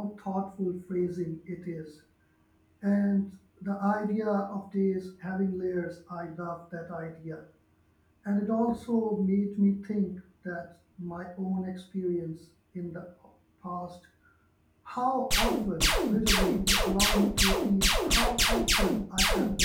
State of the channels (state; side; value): identical; both; correlation 1.00